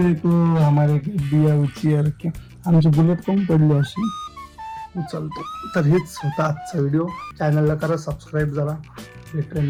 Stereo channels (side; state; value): both; identical; correlation 1.00